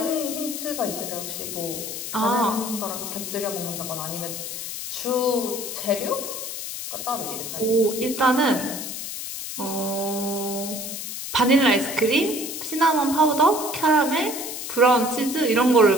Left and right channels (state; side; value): noise; left; hiss, 6 dB below the sound